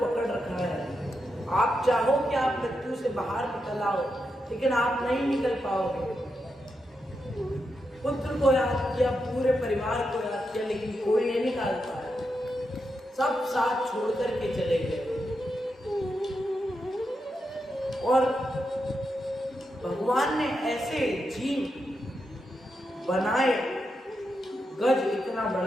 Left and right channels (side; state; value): both; normal; correlation 0.86